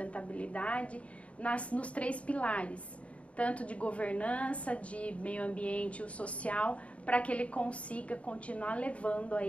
nos 3 pilares, tanto de governança, de meio ambiente e o social, para que ele consiga continuar levando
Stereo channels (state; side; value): late; right; 0.064 ms